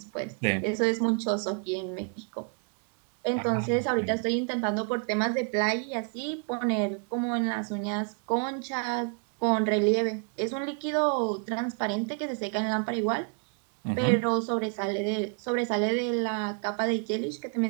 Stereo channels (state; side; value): quieter; left; 39.3 dB